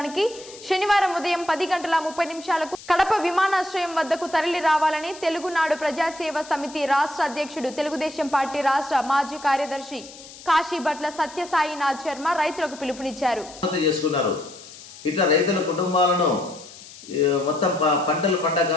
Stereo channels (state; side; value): noise; left; hiss, 17 dB below the sound